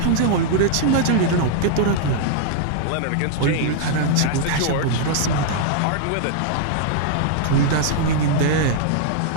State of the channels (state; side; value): different; both; correlation -0.01